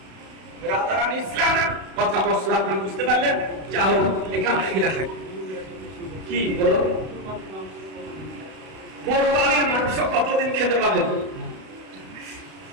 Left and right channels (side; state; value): left; late; 32 ms